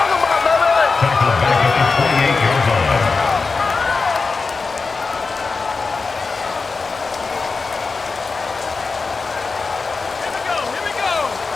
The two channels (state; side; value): quieter; right; 4.3 dB